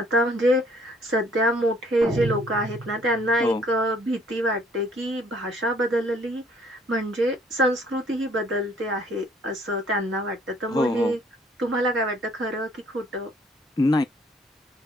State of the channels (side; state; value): both; normal; correlation 0.61